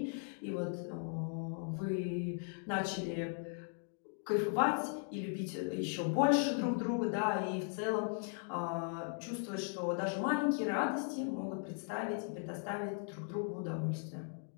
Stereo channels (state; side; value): silent; right; 52 dB below the other